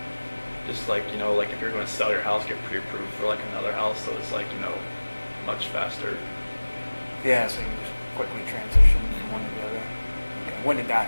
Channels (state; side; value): inverted; both; correlation -1.00